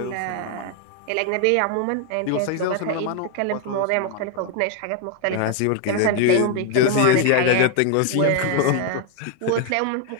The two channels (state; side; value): different; both; correlation 0.00